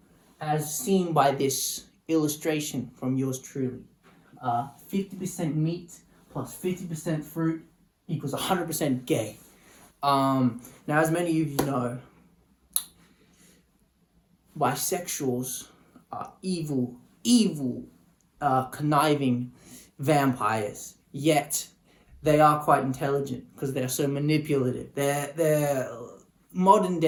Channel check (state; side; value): identical; both; correlation 1.00